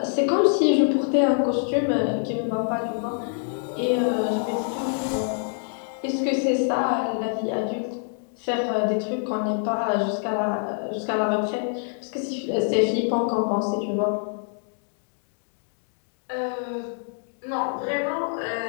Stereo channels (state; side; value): silent; right; 58 dB below the other